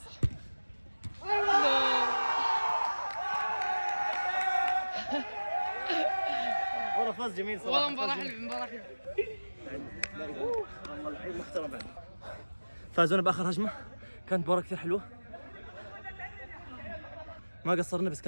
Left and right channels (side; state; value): both; inverted; correlation -1.00